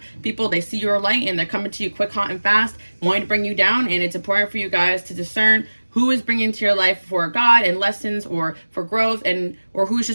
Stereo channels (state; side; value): inverted; both; correlation -1.00